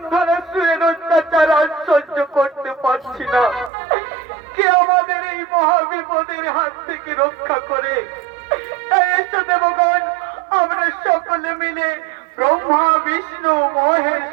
সুরের অত্যাচার আর সহ্য করতে পারছি না। কে আমাদের এই মহাবিপদের হাত থেকে রক্ষা করে। তাই এসো দেবগণ, আমরা সকলে মিলে ব্রহ্মা বিষ্ণু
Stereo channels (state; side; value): drops out; left; at 3.7 s